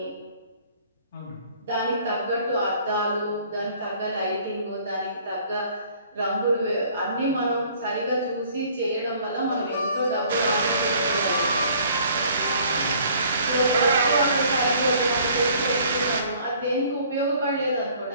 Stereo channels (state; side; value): inverted; both; correlation -0.56